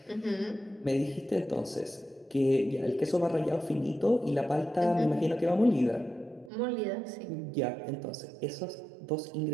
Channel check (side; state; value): left; drops out; at 6.5 s